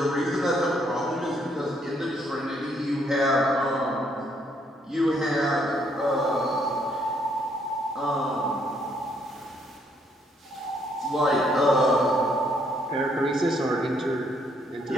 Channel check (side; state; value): both; normal; correlation 0.70